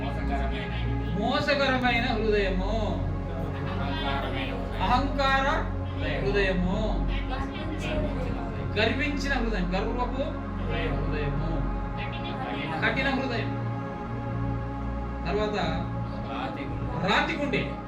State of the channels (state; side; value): identical; both; correlation 1.00